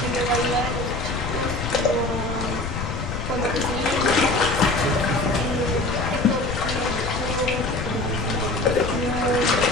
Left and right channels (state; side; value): noise; left; rumble, 5 dB below the sound